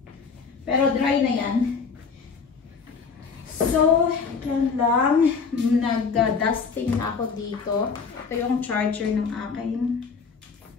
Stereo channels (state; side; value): quieter; right; 5.4 dB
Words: Pero dry na yan. So, yan lang. Nag-dusting ako dito. Ito yung charger ng aking